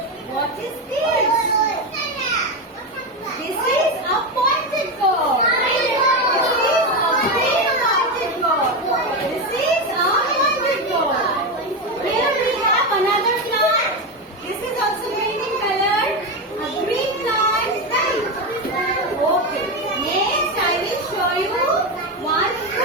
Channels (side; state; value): both; normal; correlation 0.13